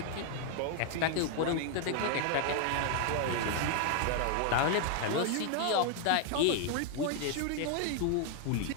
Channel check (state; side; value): different; both; correlation 0.00